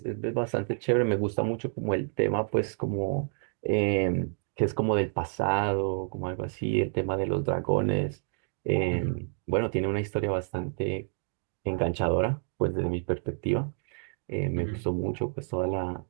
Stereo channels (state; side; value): silent; left; 58 dB below the other